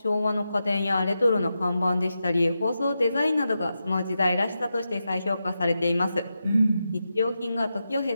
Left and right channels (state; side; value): inverted; both; correlation -0.88